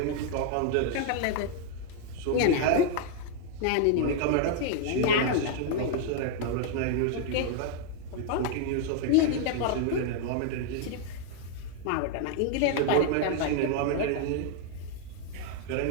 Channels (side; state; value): both; different; correlation 0.00